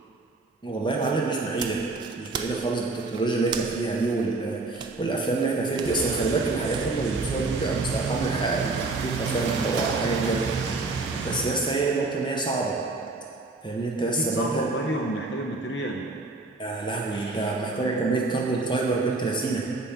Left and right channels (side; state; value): left; quieter; 3.2 dB